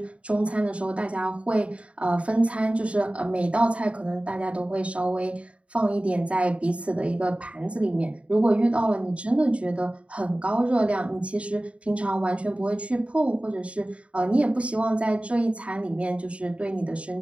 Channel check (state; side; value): late; left; 0.063 ms